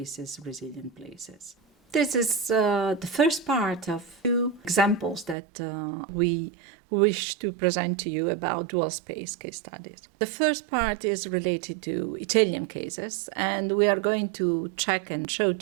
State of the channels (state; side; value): drops out; left; at 5.4 s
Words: resilient places. This is the first part of two examples that we wish to present to you about dual space case studies. The first part is related to Italian cases, and we are going to check and show